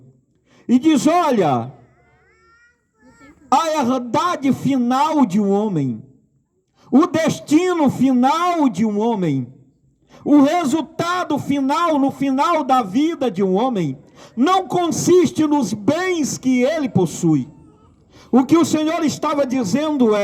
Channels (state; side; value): identical; both; correlation 1.00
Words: e diz: olha, a herdade final de um homem, o destino final de um homem, o resultado final, no final da vida de um homem, não consiste nos bens que ele possui. O que o Senhor estava dizendo